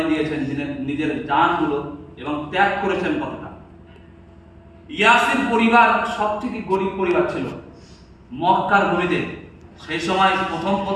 দিয়েছেন, নিজের জানগুলো, এবং ত্যাগ করেছেন কতটা। ইয়াসির পরিবার সবথেকে গরিব পরিবার ছিল মক্কার ভূমিতে। সেই সময়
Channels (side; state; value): both; identical; correlation 1.00